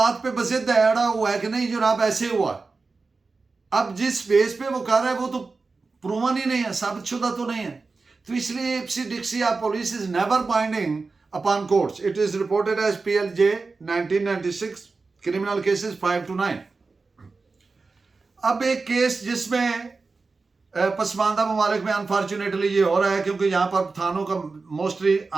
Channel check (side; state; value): left; quieter; 4.1 dB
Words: पे बजिद अड़ा हुआ है कि नहीं जनाब ऐसे हुआ, अब जिस बेस पे वो कर रहा है वो तो प्रूवन ही नहीं है, साबितशुदा तो नहीं है। तो इसलिए ipse dixit of police is never binding upon courts. It is reported as PLJ 1996 criminal cases 5 to 9। अब एक केस जिसमें पसमानदा ममालिक में अनफॉर्चुनेटली ये हो रहा है क्योंकि यहाँ पर थानों का मोस्टली